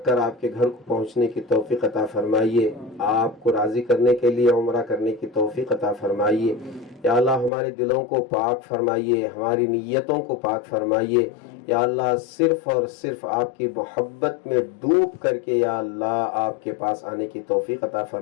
کر آپ کے گھر کو پہنچنے کی توفیق عطا فرمائیے، آپ کو راضی کرنے کے لیے عمرہ کرنے کی توفیق عطا فرمائیے۔ یا اللہ ہمارے دلوں کو پاک فرمائیے، ہماری نیتوں کو پاک فرمائیے۔ یا اللہ صرف اور صرف آپ کی محبت میں ڈوب کر کے یا اللہ آپ کے پاس آنے کی توفیق عطا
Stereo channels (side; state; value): right; drops out; at 7.5 s